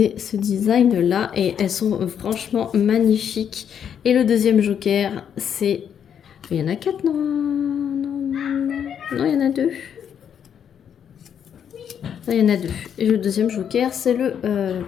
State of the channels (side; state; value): right; quieter; 8.4 dB